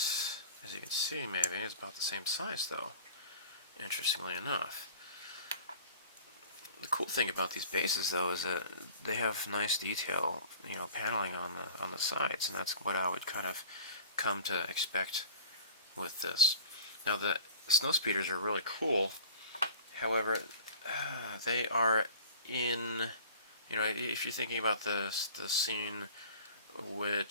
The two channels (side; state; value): both; inverted; correlation -0.43